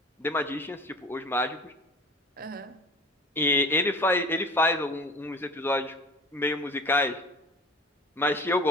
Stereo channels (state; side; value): normal; both; correlation 0.41